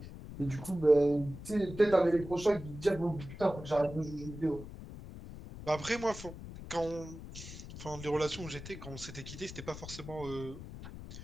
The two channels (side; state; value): left; noise; rumble, 12 dB below the sound